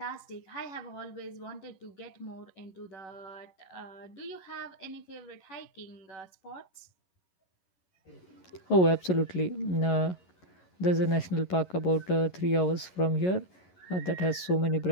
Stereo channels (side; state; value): right; late; 11 ms